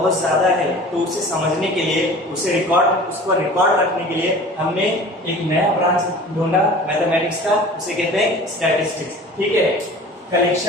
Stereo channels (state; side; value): normal; both; correlation 0.42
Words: ज्यादा है, तो उसे समझने के लिए, उसको रिकॉर्ड रखने के लिए हमने एक नया ब्रांच ढूंढा मैथमेटिक्स का, उसे कहते हैं स्टैटिस्टिक्स। ठीक है,